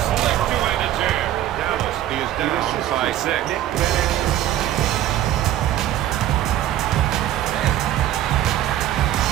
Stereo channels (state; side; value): quieter; left; 12.5 dB